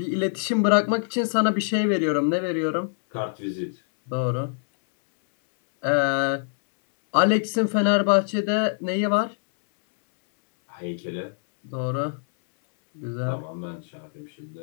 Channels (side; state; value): right; silent; 62 dB below the other